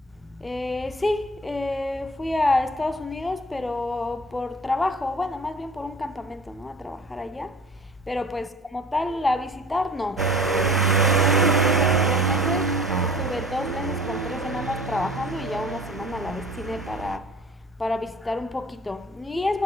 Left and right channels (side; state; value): both; normal; correlation 0.47